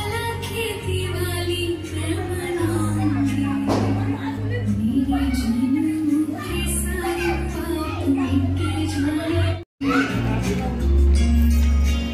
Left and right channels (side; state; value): both; identical; correlation 1.00